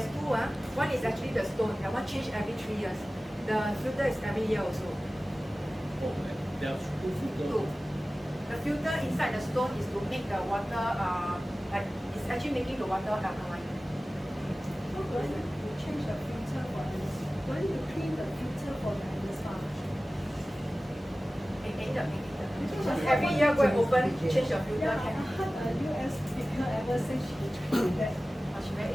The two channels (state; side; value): normal; both; correlation 0.96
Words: two. One is actually the stone. That one change every 3 years. The filter is every year also. Oh, there are two filters. Two. The filter inside the stone is to make the water like it's actually making the water alkaline. So do I need to change the filter for this? Do I need to clean the filter for the spa? Just every year go and open, change your filter. Yeah, I heard a US speaker ever say she clean that. She